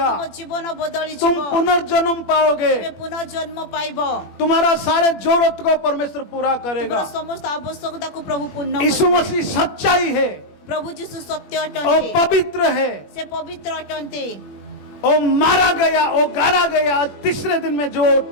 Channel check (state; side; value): late; right; 21 ms